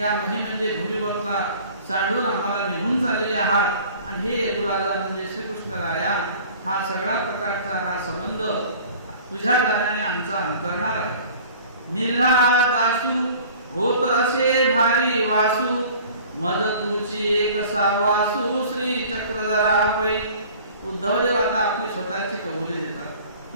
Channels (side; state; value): both; inverted; correlation -0.47